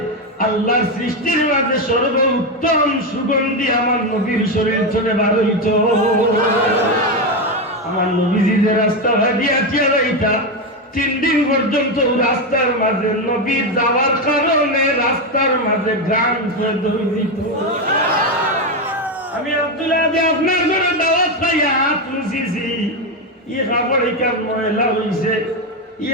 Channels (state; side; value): normal; both; correlation 0.10